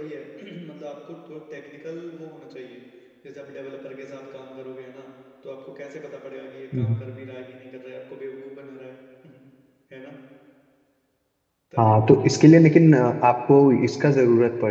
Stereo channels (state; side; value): identical; both; correlation 1.00